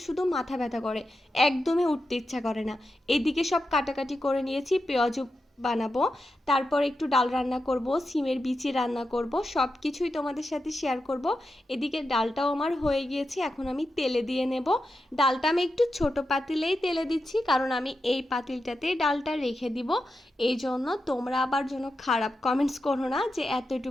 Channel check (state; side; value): normal; both; correlation 0.89